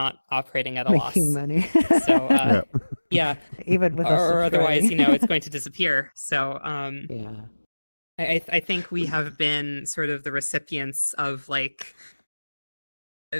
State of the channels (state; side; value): inverted; both; correlation -1.00